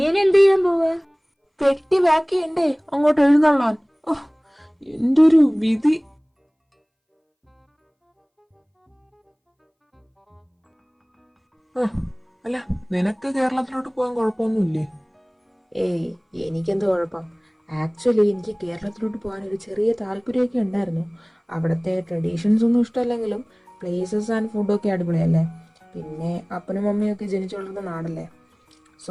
ഇനി എന്ത് ചെയ്യാൻ പോവാ? പെട്ടി പാക്ക് ചെയ്യണ്ടേ അങ്ങോട്ട് എഴുന്നള്ളാൻ. എന്റെ ഒരു വിധി. അല്ല, നിനക്ക് കേരളത്തിലോട്ട് പോകാൻ കുഴപ്പമൊന്നുമില്ലേ? ഏയ്, എനിക്കെന്ത് കുഴപ്പം. ആക്ച്വലി എനിക്ക് കേരളത്തിലോട്ട് പോകാൻ ഒരു ചെറിയ താല്പര്യമൊക്കെ ഉണ്ടായിരുന്നു. അവിടുത്തെ ട്രഡീഷൻസ് ഒന്നും ഇഷ്ടമല്ലെങ്കിലും പ്ലേസസ് ആൻഡ് ഫുഡൊക്കെ അടിപൊളിയല്ലേ. പിന്നെ അപ്പനും മമ്മിയൊക്കെ ജനിച്ചു വളർന്ന നാടല്ലേ.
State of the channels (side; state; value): both; identical; correlation 1.00